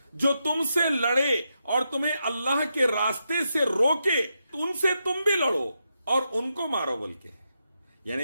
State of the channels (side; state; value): both; inverted; correlation -0.84